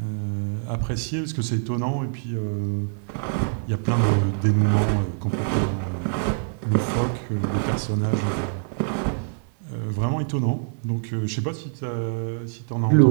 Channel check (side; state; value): left; silent; 62 dB below the other